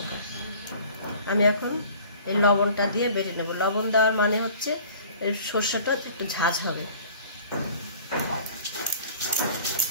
আমি এখন এই লবণটা দিয়ে বেটে নেব। লবণ দেওয়ার মানে হচ্ছে এই সর্ষেটা একটু ঝাঁঝ হবে।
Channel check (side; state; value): both; inverted; correlation -0.48